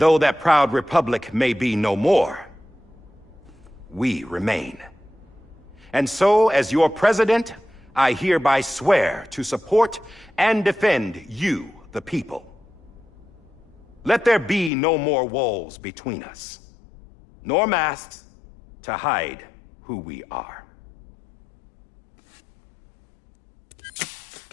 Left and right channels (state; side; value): drops out; right; at 14.7 s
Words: that proud republic may be no more, we remain. And so, as your president, I hereby swear to support and defend you, the people. Let there be no more walls between us, nor masks to hide who we are.